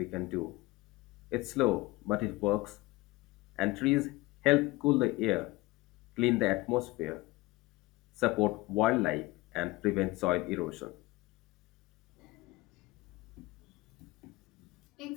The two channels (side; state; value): right; quieter; 20.6 dB